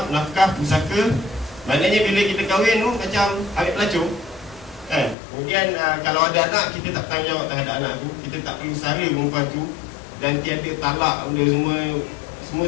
nafkah, pusaka. Maknanya bila kita kahwin tu macam ambil pelacur kan. Kemudian kalau ada anak, kita tak tanggungjawab terhadap anak tu, kita tak perlu sara perempuan tu, dan tiada talak benda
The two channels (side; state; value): right; drops out; at 5.2 s